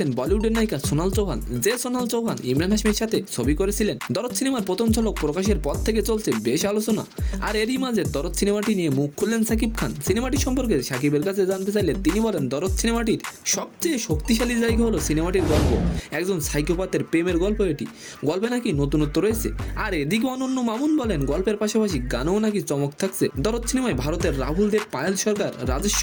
বলিউডের নায়িকা সোনাল চৌহান। যে সোনাল চৌহান ইমরান হাশমির সাথে ছবি করেছিলেন। দরদ সিনেমার প্রথম ঝলক প্রকাশের পর থেকে চলছে বেশ আলোচনা। আর এরই মাঝে দরদ সিনেমাটি নিয়ে মুখ খুললেন সাকিব খান। সিনেমাটি সম্পর্কে সাকিবের কাছে জানতে চাইলে তিনি বলেন, দরদ সিনেমাটির সবচেয়ে শক্তিশালী জায়গা হলো সিনেমাটির গল্প। একজন সাইকোপাথের প্রেমের গল্প এটি। গল্পে নাকি নতুনত্ব রয়েছে। আর এদিকে অনন্য মামুন বলেন, গল্পের পাশাপাশি গানেও নাকি চমক থাকছে। দরদ সিনেমায় ভারতের রাহুল দেব, পায়েল সরকার, রাজেশ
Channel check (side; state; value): both; identical; correlation 1.00